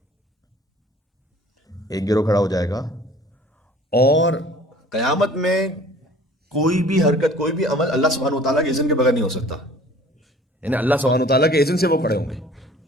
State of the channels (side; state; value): both; normal; correlation 0.50